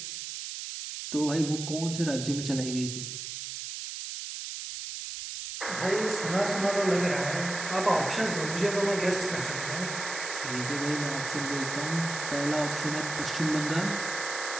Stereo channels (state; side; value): noise; right; hiss, 6 dB below the sound